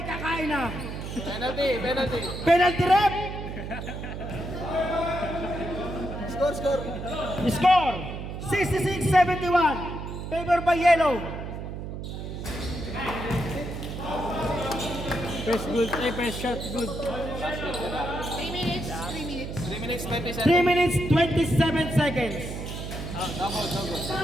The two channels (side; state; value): right; noise; hum, 7 dB below the sound